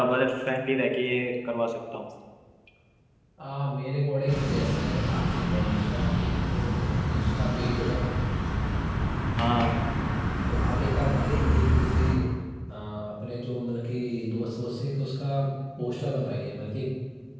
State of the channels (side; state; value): both; identical; correlation 1.00